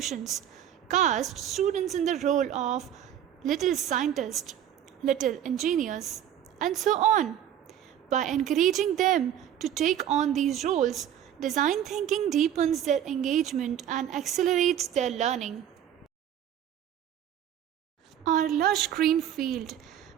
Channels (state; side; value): quieter; left; 10.4 dB